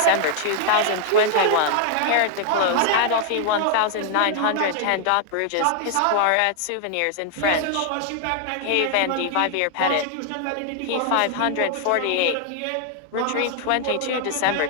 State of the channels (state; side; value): different; both; correlation 0.00